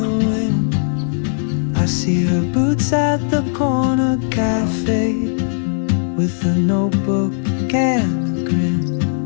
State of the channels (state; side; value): silent; right; digital silence